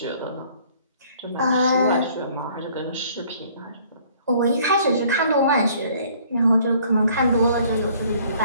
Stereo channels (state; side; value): inverted; both; correlation -0.57